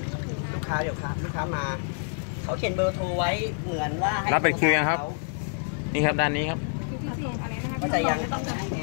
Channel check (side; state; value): right; silent; digital silence